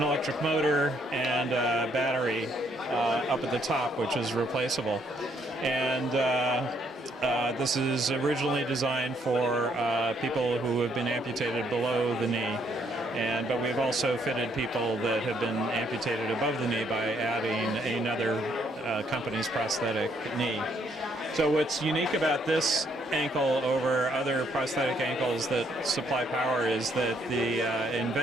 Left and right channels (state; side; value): normal; both; correlation 0.70